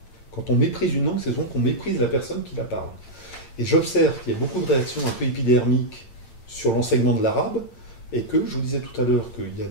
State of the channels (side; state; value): right; late; 9.0 ms